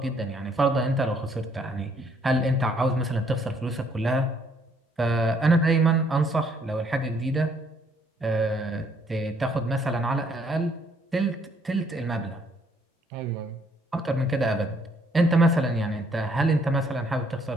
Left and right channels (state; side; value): normal; both; correlation 0.66